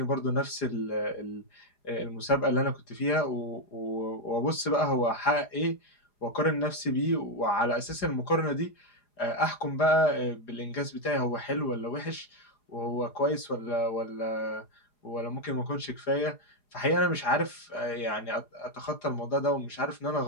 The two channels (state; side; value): late; right; 4.9 ms